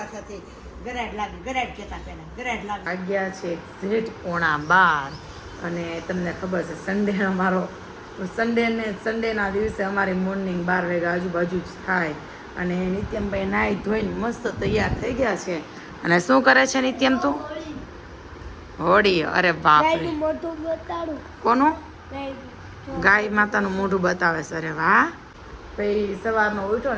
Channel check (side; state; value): both; identical; correlation 1.00